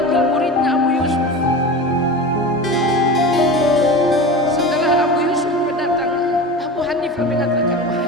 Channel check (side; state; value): both; normal; correlation 0.30